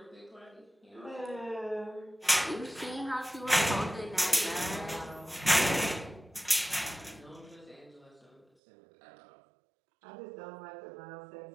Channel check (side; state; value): left; drops out; at 8.5 s